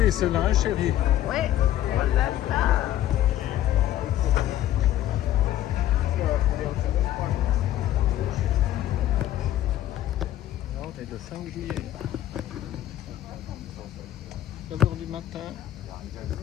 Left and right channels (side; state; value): right; quieter; 12.9 dB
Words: celle-là, hein, chérie. Ouais, voilà ça. Là, on est le 5 juillet. 9h du matin